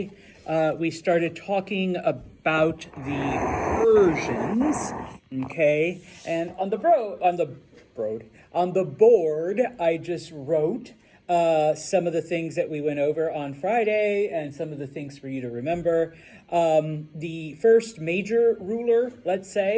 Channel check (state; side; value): identical; both; correlation 1.00